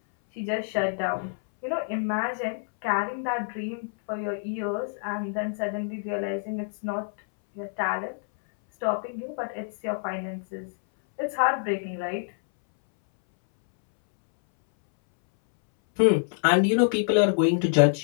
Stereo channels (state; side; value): silent; right; 60 dB below the other